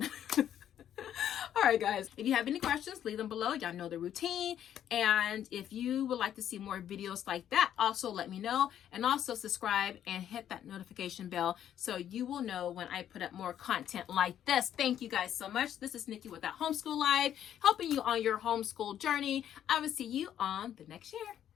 All right, guys, if you have any questions, leave them below. Y'all know the routine. And if you would like to see more videos like that, also let me know. And also subscribe and hit that notification bell so you will know when I put up more content like this. Thank you guys so much. This is Nikki with that Homeschool Live, helping you on your homeschool journey. I will see you on the next year.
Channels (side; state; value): right; quieter; 10.3 dB